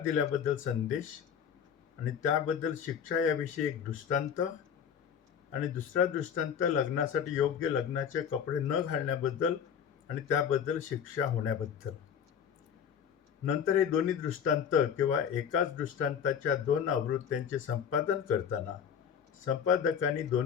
दिल्याबद्दल संदेश, आणि त्याबद्दल शिक्षा याविषयी एक दृष्टांत, आणि दुसरा दृष्टांत लग्नासाठी योग्य लग्नाचे कपडे न घालण्याबद्दल आणि त्याबद्दल शिक्षा होण्याबद्दल. नंतर हे दोन्ही दृष्टांत किंवा एकाच दृष्टांताच्या 2 आवृत्त्यांचे संपादन करताना संपादकांनी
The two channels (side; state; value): right; quieter; 7.9 dB